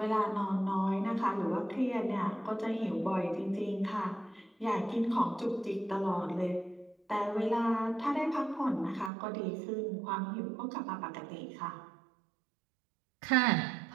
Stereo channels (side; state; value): left; drops out; at 9.1 s